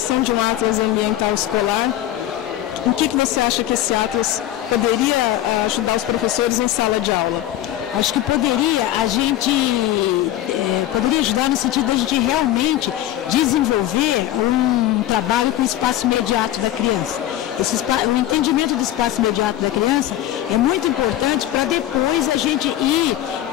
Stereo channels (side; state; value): right; quieter; 13.1 dB